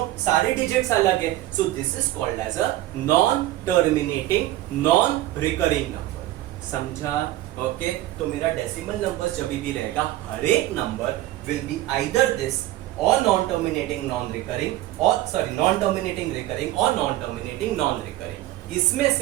सारे digits अलग है. So this is called as a non-terminating, non-recurring number. समझा? Okay, तो मेरा decimal numbers जब भी रहेगा, हर एक number will be either this or non-terminating, non-recurring, or sorry, non-terminating recurring or non-terminating non-recurring. इसमें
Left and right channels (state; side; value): quieter; left; 15.5 dB